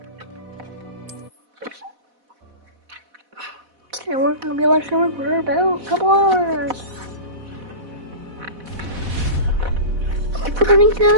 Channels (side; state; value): left; late; 4.1 ms